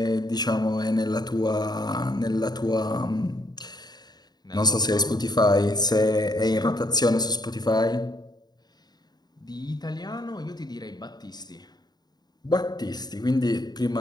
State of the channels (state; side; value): late; right; 0.20 ms